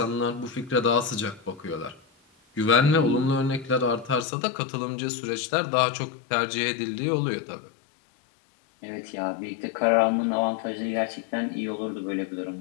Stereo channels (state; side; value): drops out; right; at 4.2 s